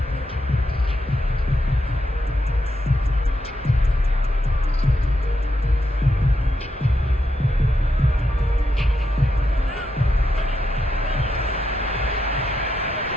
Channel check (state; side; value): normal; both; correlation 0.83